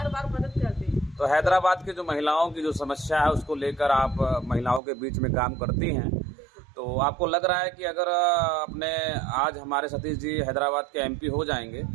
बार मदद करते हैं। तो हैदराबाद के जो महिलाओं की जो समस्या है उसको लेकर आप महिलाओं के बीच में काम करती हैं, तो आपको लग रहा है कि अगर अपने आज हमारे सतीश जी हैदराबाद के MP हो जाएंगे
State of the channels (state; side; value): drops out; left; at 4.8 s